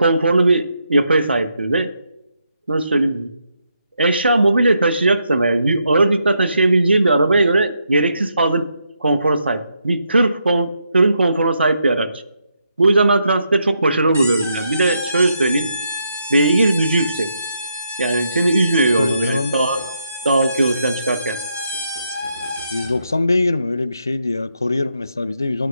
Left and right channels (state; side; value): inverted; both; correlation -0.79